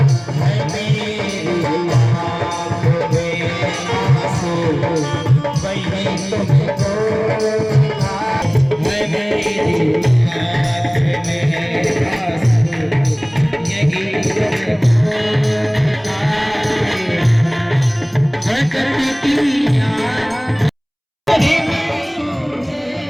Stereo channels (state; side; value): identical; both; correlation 1.00